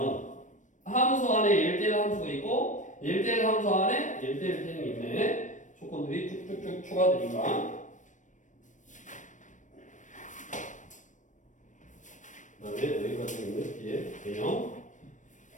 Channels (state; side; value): late; right; 0.37 ms